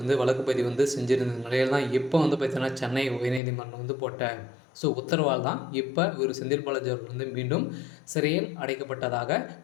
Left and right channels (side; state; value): right; drops out; at 3.4 s